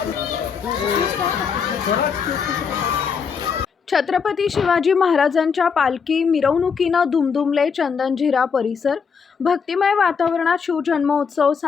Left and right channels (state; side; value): quieter; right; 6.1 dB